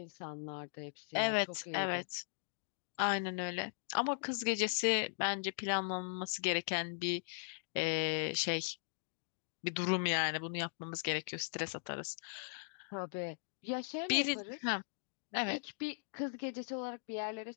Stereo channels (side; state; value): right; silent; digital silence